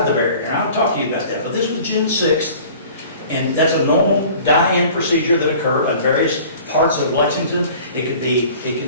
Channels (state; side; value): inverted; both; correlation -0.46